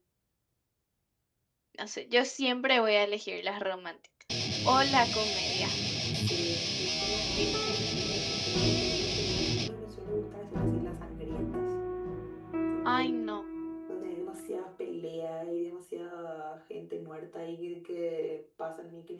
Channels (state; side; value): identical; both; correlation 1.00